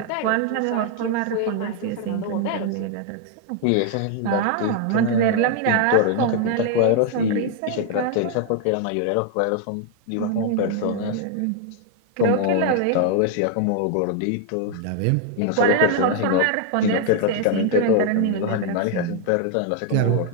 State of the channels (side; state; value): both; different; correlation 0.00